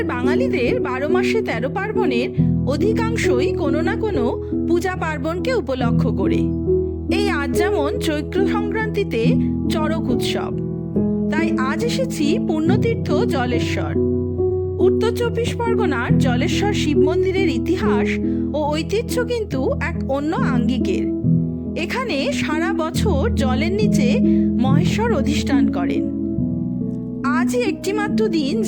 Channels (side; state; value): both; identical; correlation 1.00